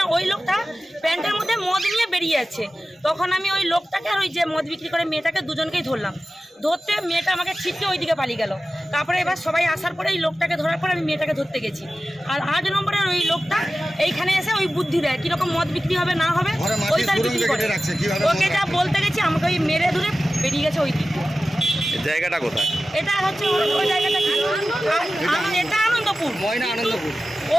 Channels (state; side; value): normal; both; correlation 0.95